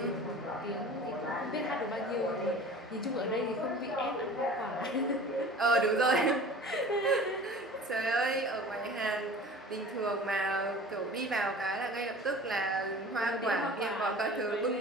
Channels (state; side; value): normal; both; correlation 0.41